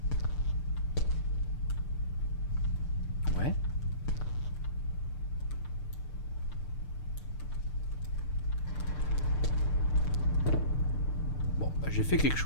Ouais. Bon, bah, j'ai fait quelque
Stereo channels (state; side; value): late; right; 6.7 ms